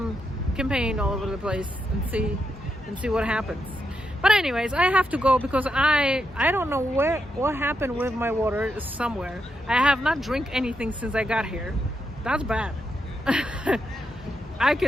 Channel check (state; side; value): normal; both; correlation 0.83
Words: campaign all over the place and see what happens. But anyways, I have to go because I don't know what happened with my water. Somewhere I have not drank anything since I got here. That's bad. I